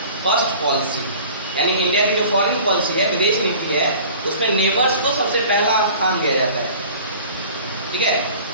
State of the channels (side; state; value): both; inverted; correlation -0.44